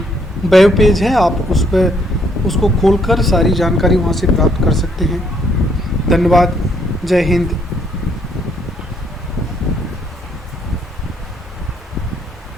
वेब पेज है, आप उस पर उसको खोलकर सारी जानकारी वहाँ से प्राप्त कर सकते हैं। धन्यवाद। जय हिंद।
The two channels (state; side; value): normal; both; correlation 0.69